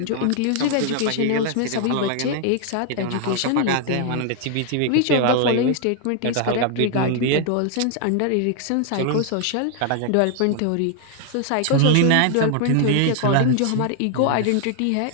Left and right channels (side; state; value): both; different; correlation 0.00